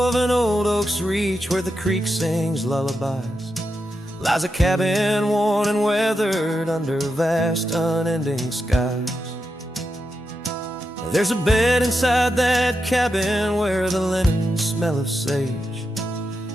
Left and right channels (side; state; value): both; normal; correlation 0.87